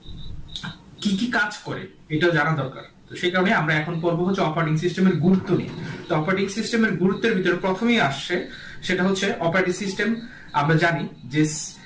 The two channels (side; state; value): both; identical; correlation 1.00